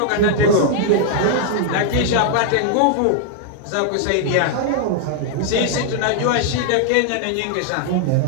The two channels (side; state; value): both; different; correlation -0.01